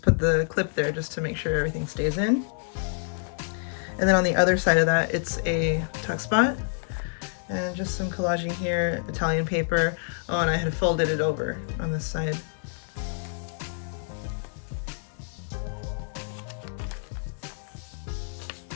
put the clip there just to make sure everything stays in. And then on the other side of that, it's a tuck spot and just some collaging here, Italian paper. Oh, and I had folded it over on this side.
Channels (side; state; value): right; silent; digital silence